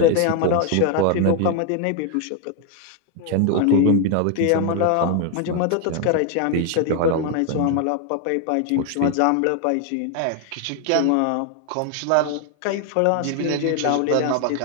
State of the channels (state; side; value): different; both; correlation 0.01